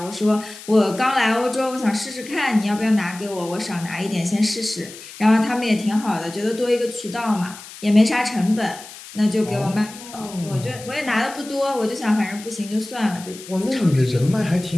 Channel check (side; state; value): left; noise; hiss, 16 dB below the sound